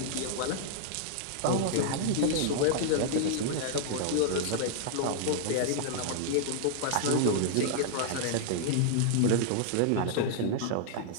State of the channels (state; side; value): different; both; correlation -0.01